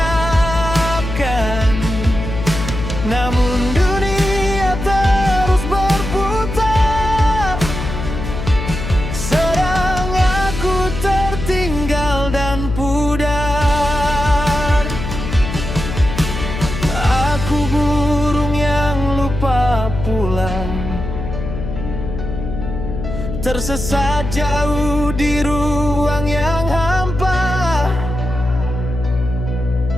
Namun dunia terus berputar, sedang aku tertinggal dan pudar. Aku burung yang lupa pulang, tersesat jauh di ruang yang hampa.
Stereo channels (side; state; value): left; noise; hum, 6 dB below the sound